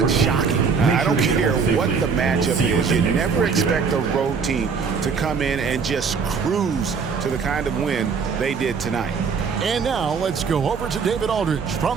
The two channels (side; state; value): left; quieter; 5.6 dB